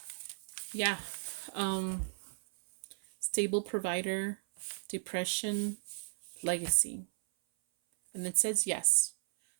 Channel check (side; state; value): left; silent; 54 dB below the other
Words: yeah. Stable provider, depression, legacy. And it says yes.